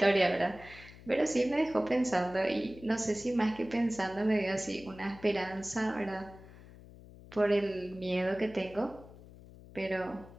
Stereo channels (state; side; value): noise; left; hum, 19 dB below the sound